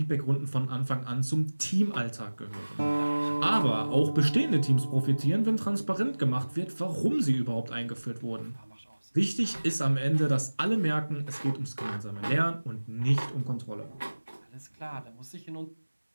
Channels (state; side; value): inverted; both; correlation -1.00